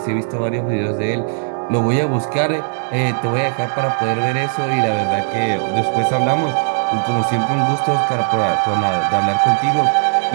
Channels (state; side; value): silent; left; digital silence